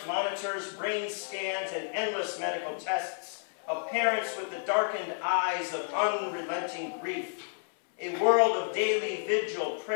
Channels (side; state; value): right; silent; 57 dB below the other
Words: monitors, brain scans, and endless medical tests, of parents with the darkened eyes of unrelenting grief. A world of daily vigil,